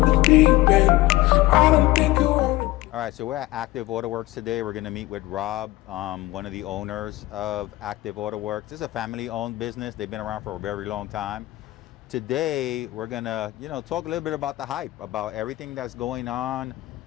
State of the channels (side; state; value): right; quieter; 18.0 dB